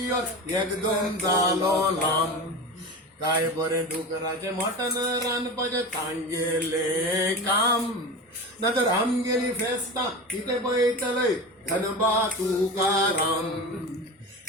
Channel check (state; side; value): normal; both; correlation 0.28